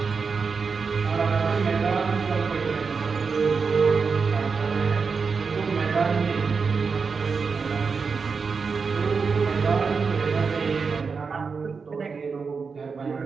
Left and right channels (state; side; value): quieter; left; 5.2 dB